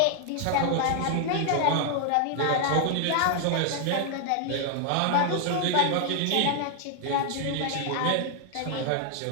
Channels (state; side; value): different; both; correlation 0.00